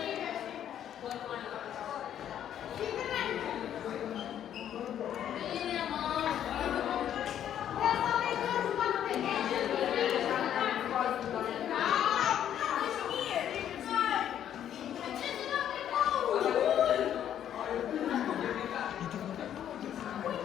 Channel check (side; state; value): right; quieter; 10.2 dB